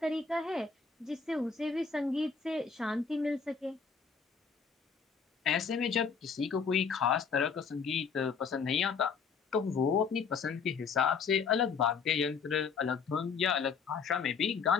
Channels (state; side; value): quieter; right; 5.8 dB